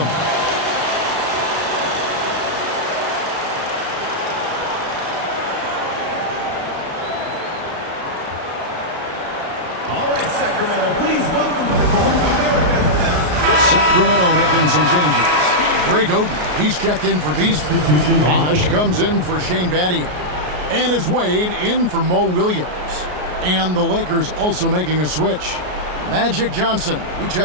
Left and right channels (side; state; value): left; late; 33 ms